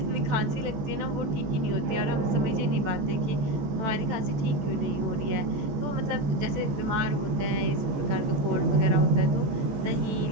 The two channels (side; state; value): left; late; 14 ms